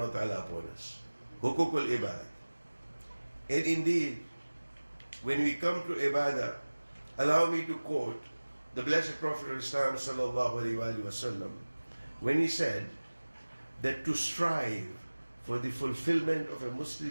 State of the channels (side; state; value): both; inverted; correlation -1.00